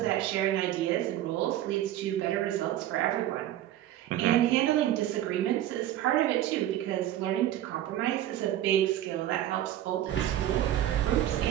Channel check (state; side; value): quieter; left; 12.8 dB